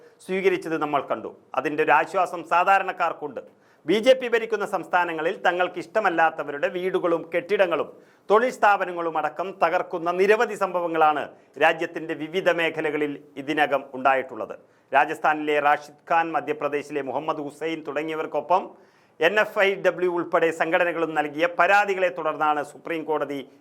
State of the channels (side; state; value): both; identical; correlation 1.00